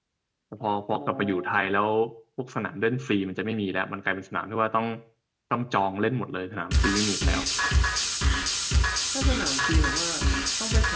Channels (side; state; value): both; identical; correlation 1.00